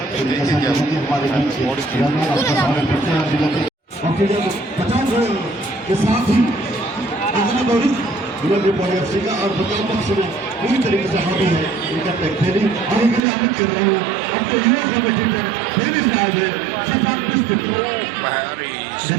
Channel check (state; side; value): drops out; left; at 13.2 s